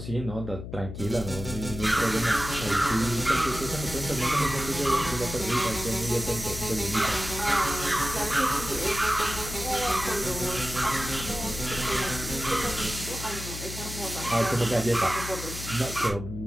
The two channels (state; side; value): noise; left; hum, 9 dB below the sound